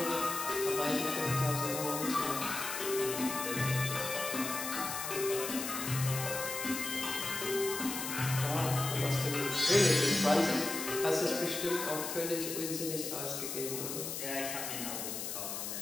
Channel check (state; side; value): noise; left; hiss, 4 dB below the sound